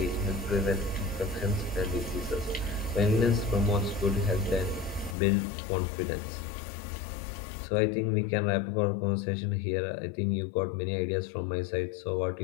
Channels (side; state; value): right; drops out; at 5.2 s